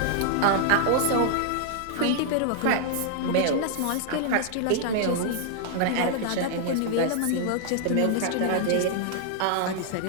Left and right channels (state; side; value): different; both; correlation -0.01